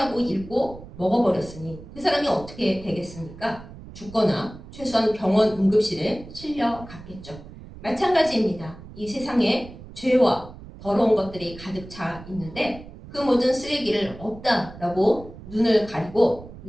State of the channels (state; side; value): noise; right; rumble, 16 dB below the sound